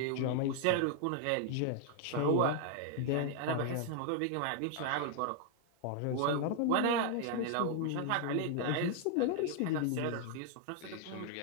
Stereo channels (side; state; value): both; different; correlation 0.00